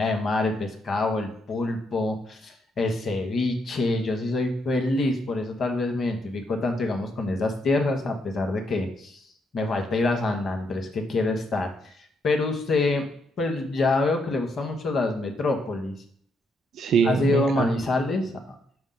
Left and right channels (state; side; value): normal; both; correlation 0.77